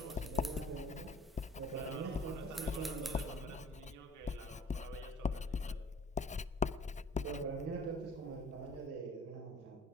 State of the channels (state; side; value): normal; both; correlation 0.51